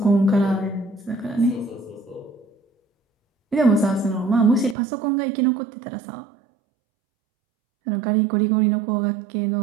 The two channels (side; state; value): left; drops out; at 4.8 s